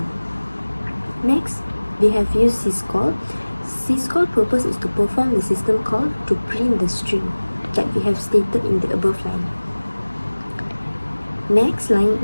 Next, we have used syscall. Syscall purpose is to perform the system call to print the string that we have stated in the above line. Next line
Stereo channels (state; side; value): inverted; both; correlation -1.00